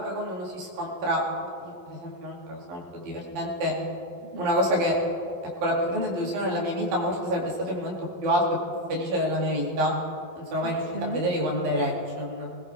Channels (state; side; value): late; left; 11 ms